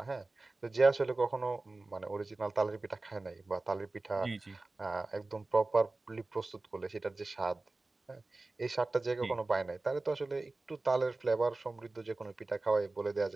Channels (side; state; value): left; quieter; 3.2 dB